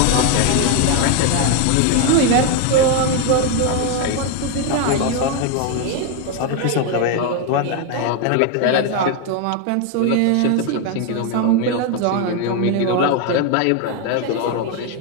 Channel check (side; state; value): both; different; correlation 0.01